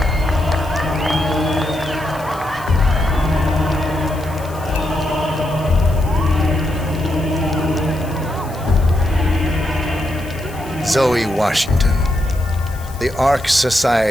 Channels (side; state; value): left; noise; hiss, 20 dB below the sound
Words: Zoe Washington, the Ark